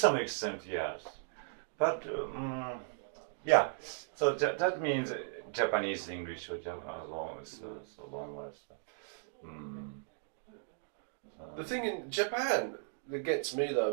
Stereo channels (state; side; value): silent; left; digital silence